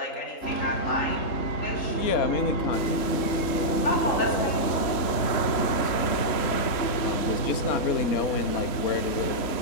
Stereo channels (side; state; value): right; late; 3.7 ms